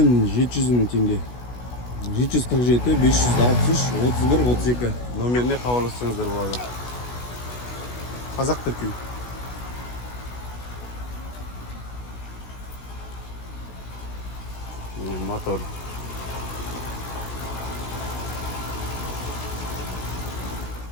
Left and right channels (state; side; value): late; right; 16 ms